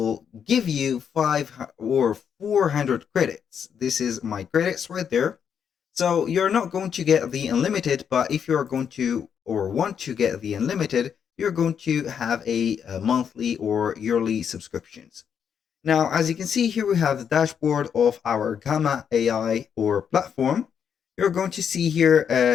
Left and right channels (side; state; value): right; quieter; 7.7 dB